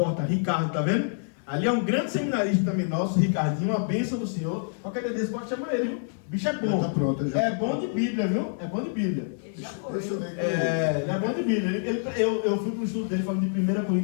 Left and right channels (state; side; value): silent; right; digital silence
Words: Ricardo, tá vendo? Ali é um grande seminarista também nosso, Ricardinho, uma bênção do Senhor. Qualquer dia desse pode chamar ele, viu? O bicho é bom. Já tá pronto, já. É bom de Bíblia, viu? É bom de Bíblia. Ele já foi. Deixa eu ver. Ele é bom de Bíblia. Eu fui para o estudo dele falando de 1